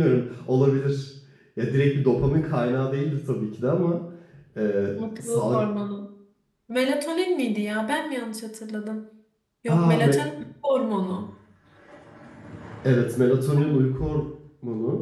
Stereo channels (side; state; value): both; identical; correlation 1.00